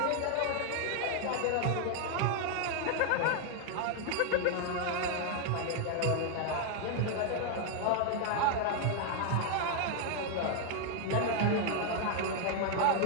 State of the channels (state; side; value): different; both; correlation 0.00